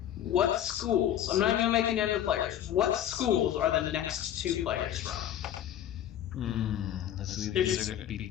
What schools, I'm not even going to make any other players, what schools are the next 2 players from? These are going to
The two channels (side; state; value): right; quieter; 11.0 dB